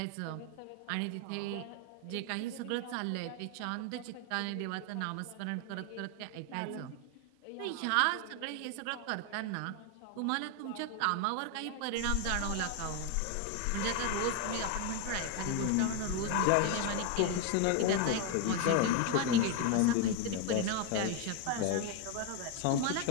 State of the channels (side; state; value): both; different; correlation 0.01